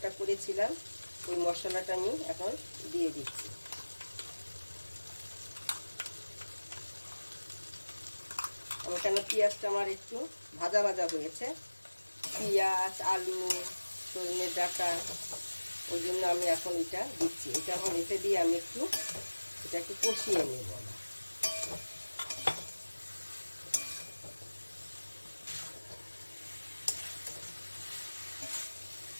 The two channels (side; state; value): both; inverted; correlation -1.00